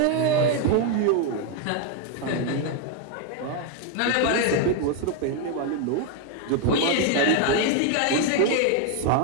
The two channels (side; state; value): both; different; correlation 0.01